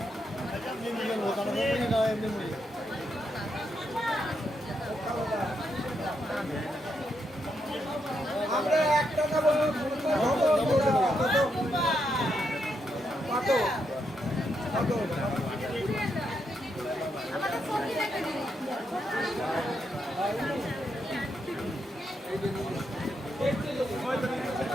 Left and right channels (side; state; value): both; normal; correlation 0.81